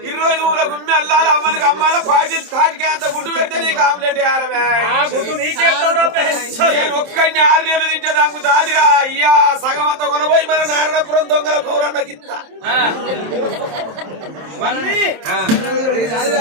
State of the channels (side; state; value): left; late; 27 ms